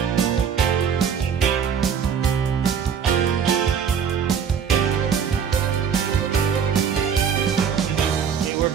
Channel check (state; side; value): quieter; left; 7.3 dB